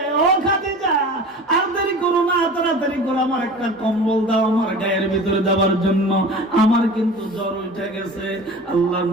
ও খাদিজা, আর দেরি করো না, তাড়াতাড়ি করো, আমার একটা কম্বল দাও আমার গায়ের ভিতরে দেওয়ার জন্য, আমার কিন্তু জ্বর উঠে গেছে। আল্লাহ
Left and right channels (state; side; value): normal; both; correlation 0.38